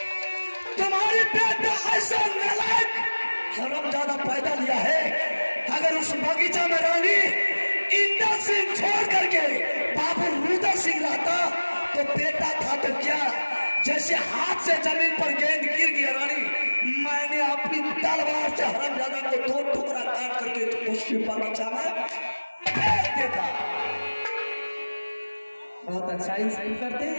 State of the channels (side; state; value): both; inverted; correlation -1.00